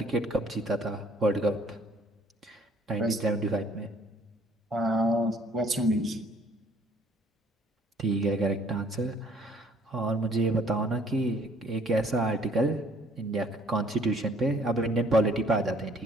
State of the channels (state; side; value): normal; both; correlation 0.59